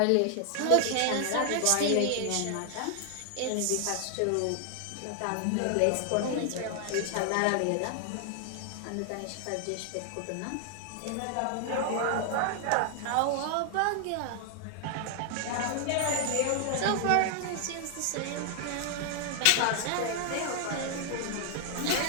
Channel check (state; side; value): different; both; correlation 0.00